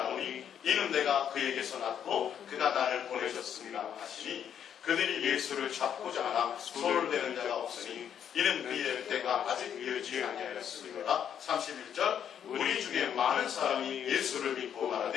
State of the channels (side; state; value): right; quieter; 8.9 dB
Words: 이는 내가 그에게서 났고 그가 나를 보내셨습니다 하시니 그들이 예수를 잡고자 하나 손을 대는 자가 없으니 이는 그의 때가 아직 이르지 아니하였음이로라. 31절 우리 중에 많은 사람이 예수를 믿고